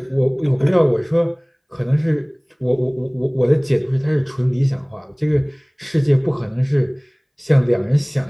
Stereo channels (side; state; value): both; identical; correlation 1.00